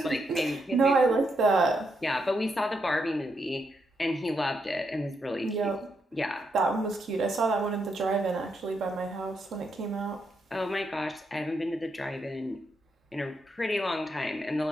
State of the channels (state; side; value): normal; both; correlation 0.80